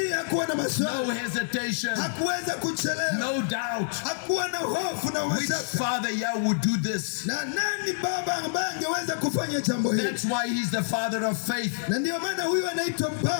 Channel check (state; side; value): silent; right; 60 dB below the other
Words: hakuwa na maswali. No hesitation. Hakuweza kuchelewa. No doubt. Hakuwa na hofu na mashaka. Which father would do this? Na nani baba ambaye angeweza kufanya jambo hili? That's why he's the father of faith. Na ndio maana huyu anaitwa